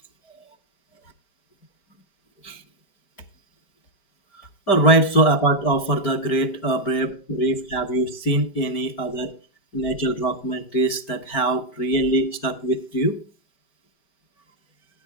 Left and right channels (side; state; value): right; late; 5.1 ms